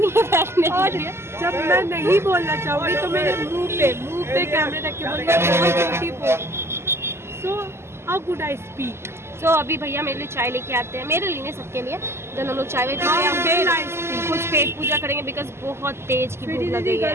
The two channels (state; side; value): late; left; 0.12 ms